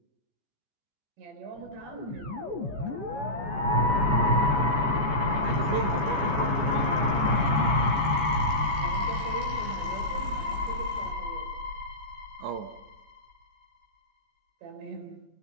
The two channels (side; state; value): left; late; 14 ms